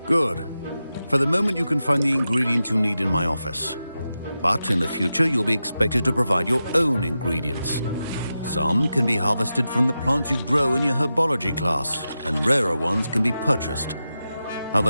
Good. For the moment, you can find the ingredients you need in my office. But in the future, you'll be expected to provide your own ingredients. Some can be harvested from the plants you grow in your herbology class, and rarer ones can be purchased.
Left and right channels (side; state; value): both; inverted; correlation -0.91